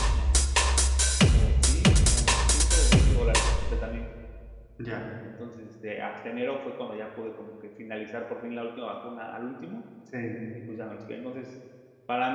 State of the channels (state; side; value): identical; both; correlation 1.00